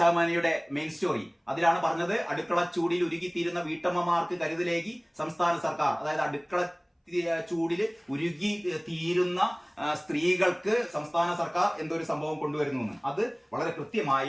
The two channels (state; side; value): identical; both; correlation 1.00